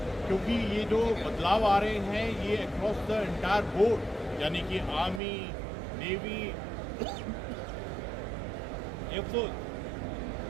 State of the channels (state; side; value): drops out; left; at 5.2 s